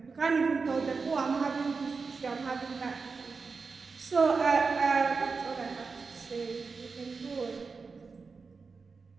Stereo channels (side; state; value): left; quieter; 4.7 dB